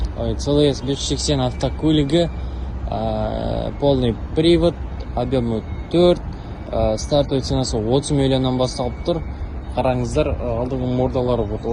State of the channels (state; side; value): identical; both; correlation 1.00